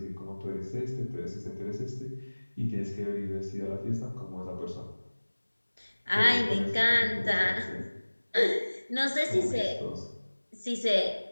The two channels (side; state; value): both; inverted; correlation -1.00